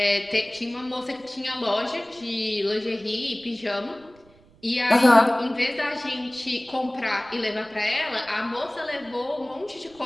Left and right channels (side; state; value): right; noise; rumble, 28 dB below the sound